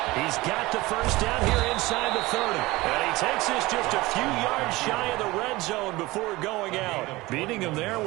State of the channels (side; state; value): left; quieter; 20.3 dB